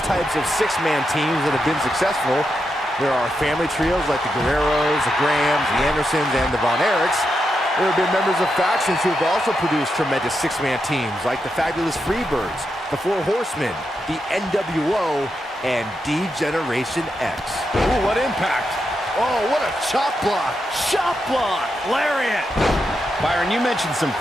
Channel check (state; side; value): normal; both; correlation 0.85